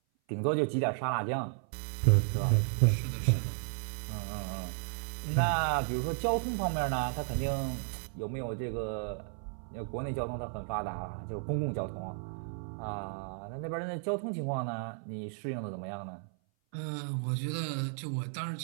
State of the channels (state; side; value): silent; left; 55 dB below the other